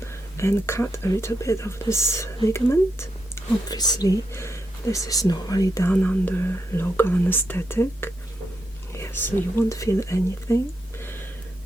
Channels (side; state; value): both; normal; correlation 0.83